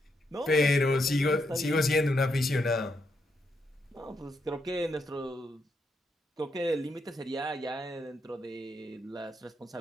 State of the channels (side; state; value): both; normal; correlation 0.80